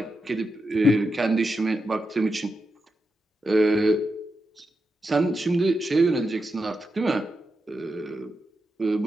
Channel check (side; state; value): both; normal; correlation 0.87